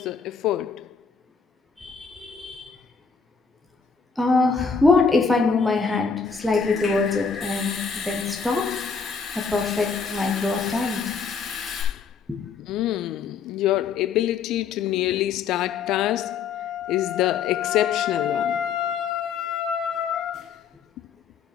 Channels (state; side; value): quieter; right; 5.8 dB